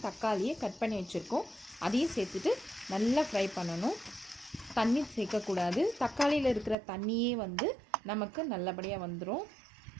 தக்காளியை கட் பண்ணி வச்சுருக்கோம். அதையும் சேர்த்துட்டு நல்லா ஃப்ரை பண்ணணும். தண்ணி சேர்க்கக்கூடாது. தக்காளியில் இருக்கிற தண்ணியே நமக்கு நல்லபடியாக வந்துடும்.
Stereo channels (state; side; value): drops out; left; at 6.8 s